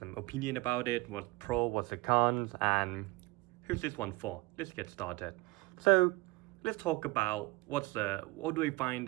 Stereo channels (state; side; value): quieter; left; 22.5 dB